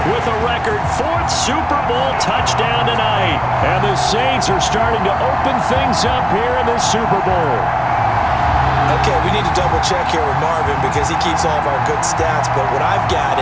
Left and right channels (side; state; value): both; identical; correlation 1.00